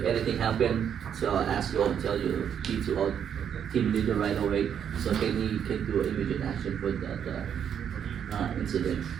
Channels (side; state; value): left; quieter; 8.5 dB